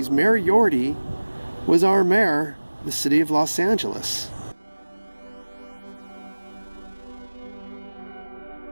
Mayor Yorty was our mayor of the city of Los Angeles.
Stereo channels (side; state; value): both; inverted; correlation -1.00